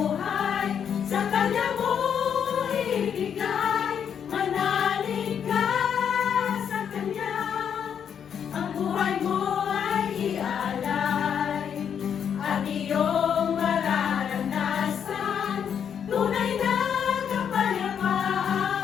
sa Kanya mo ibigay. Manalig ka sa Kanya, ang buhay mo ay ialay. At iyong mararanasan tunay na kapayapaan.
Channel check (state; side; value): quieter; right; 8.0 dB